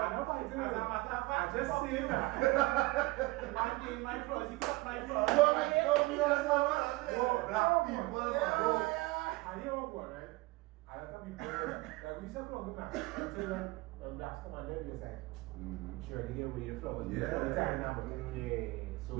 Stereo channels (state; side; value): quieter; left; 22.3 dB